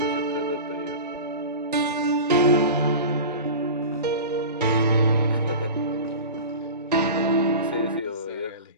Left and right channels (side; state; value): both; inverted; correlation -0.33